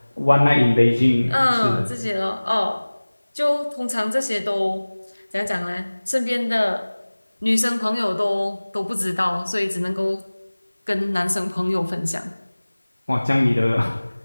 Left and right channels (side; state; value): both; inverted; correlation -1.00